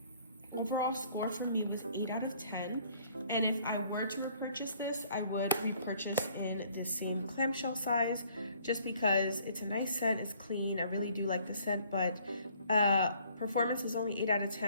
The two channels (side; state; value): both; inverted; correlation -0.60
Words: Overall score for me was 8 out of 10. And if I were to repurchase this, I would repurchase in the same clamshell size just because it's a nice scent, it's clean. I really do like the scent, but performance is only 8 out of